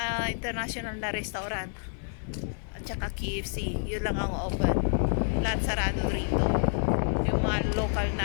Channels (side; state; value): right; silent; digital silence